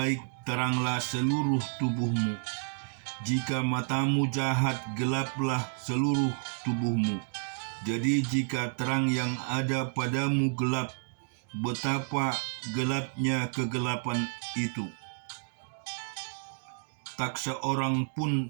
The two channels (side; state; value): left; silent; 57 dB below the other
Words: teranglah seluruh tubuhmu. Jika matamu jahat, gelaplah seluruh tubuhmu. Jadi jika terang yang ada padamu gelap, betapa gelapnya kegelapan itu. Tak seorang